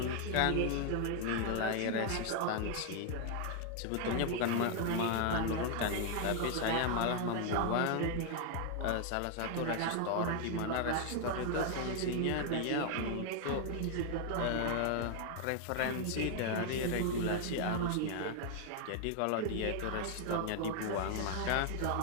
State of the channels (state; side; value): different; both; correlation 0.00